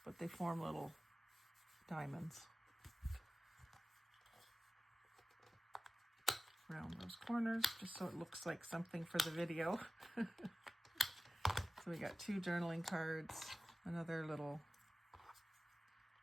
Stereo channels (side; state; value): both; normal; correlation 0.96